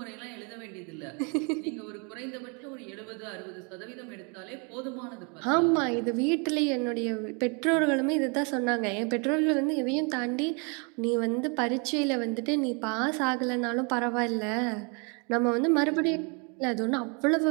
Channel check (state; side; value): quieter; left; 34.6 dB